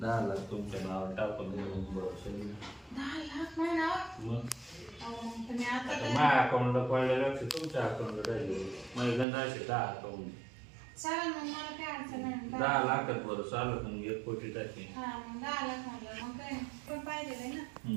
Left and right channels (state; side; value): drops out; left; at 9.2 s